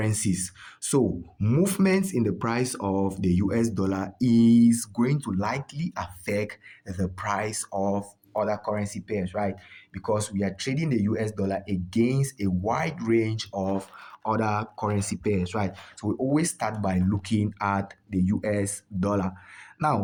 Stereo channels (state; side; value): identical; both; correlation 1.00